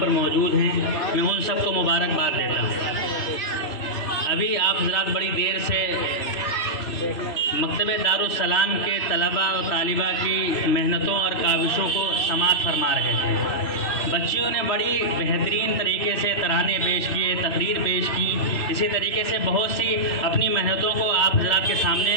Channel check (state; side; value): late; right; 3.0 ms